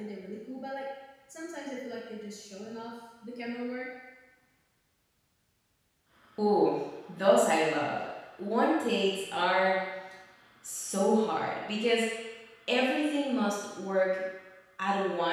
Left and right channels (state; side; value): identical; both; correlation 1.00